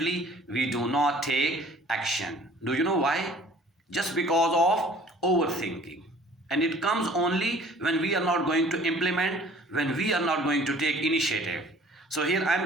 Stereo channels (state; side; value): normal; both; correlation 0.51